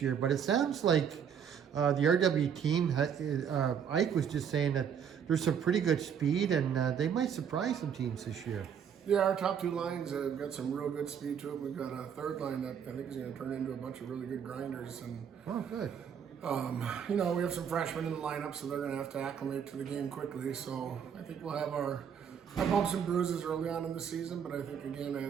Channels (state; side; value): quieter; left; 7.9 dB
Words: but it sounds like the RW team, Ike was just saying that there's some pretty good speed, and they might surprise some teams this year. Yeah, our top two lines have got some real good speed to it. We've got a third line that I think is going to turn into a bunch of really good grinders. And, Oh, good. we have some freshmen in the lineup, so they're going to have to acclimate to the game quickly. So I think we'll have our bumps and bruises early on in the season. But I think, again,